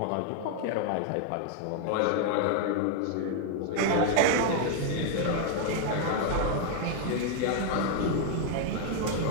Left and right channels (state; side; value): different; both; correlation 0.00